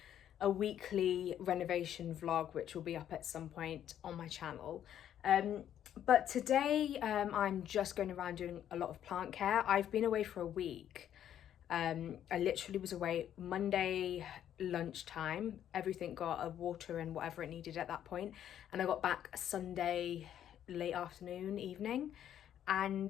weekly renovation vlog, which will be up at some point on my channel. But today I'm just going around doing a lot of plant care. I've been away for a week. I literally was away Monday lunchtime. Everything got a water and whatever it needed at that point, and I got back Sunday late afternoon, evening,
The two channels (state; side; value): quieter; right; 10.5 dB